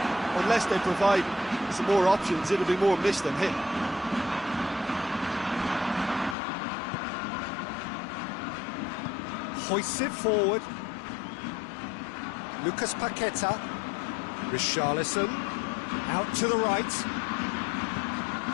unless they provide some more options, it'll be more miss than hit. Hoists it forward. Lucas Paqueta. Richarlison. Out to the right.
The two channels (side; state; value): right; drops out; at 6.4 s